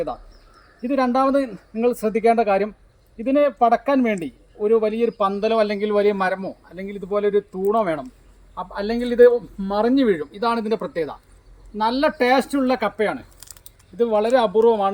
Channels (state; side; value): identical; both; correlation 1.00